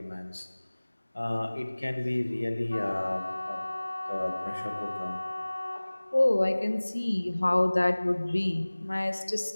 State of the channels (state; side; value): inverted; both; correlation -1.00